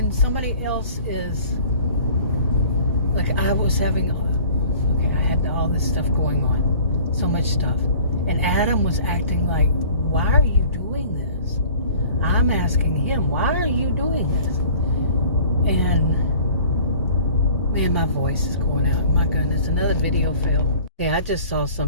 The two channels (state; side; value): inverted; both; correlation -0.48